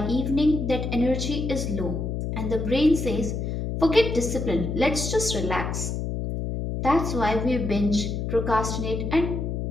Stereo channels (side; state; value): left; noise; hum, 3 dB below the sound